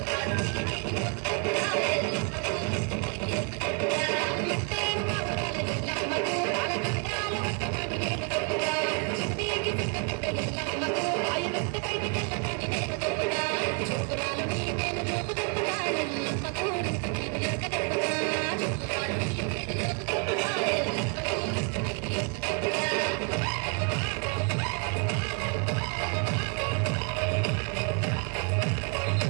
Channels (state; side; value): quieter; left; 36.7 dB